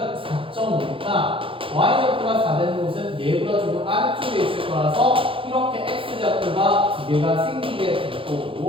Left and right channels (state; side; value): late; left; 0.26 ms